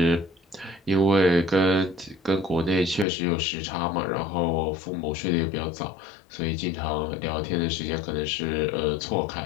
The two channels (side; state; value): right; drops out; at 3.1 s